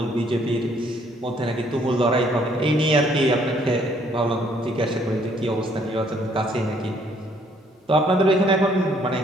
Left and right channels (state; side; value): normal; both; correlation 0.65